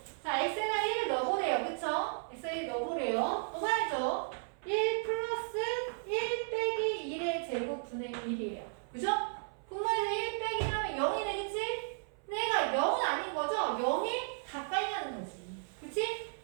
자, x에다 1을 넣어보래요. 그쵸? x에 1 넣어보래요. 넣어봐야죠. 1 플러스 1 빼기 1의 제곱분의 1이에요. 그죠? 분모에서 1 빼기 하면 0이 되겠지? 근데 얘가 0은 아닌 거죠? 0에 가까이 가는 거지. 그치?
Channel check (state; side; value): silent; left; 55 dB below the other